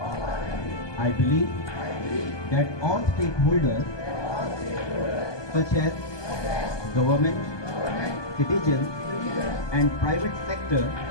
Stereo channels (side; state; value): right; late; 1.2 ms